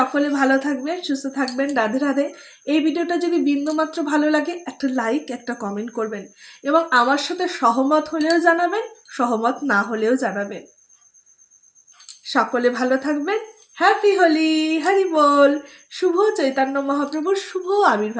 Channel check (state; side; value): identical; both; correlation 1.00